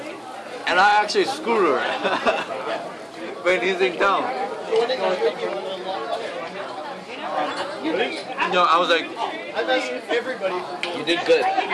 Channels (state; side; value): identical; both; correlation 1.00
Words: And I actually screwed her when he's in town. You know, I was like, You did good.